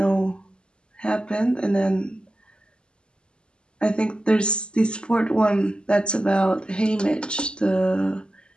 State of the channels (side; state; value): right; late; 0.050 ms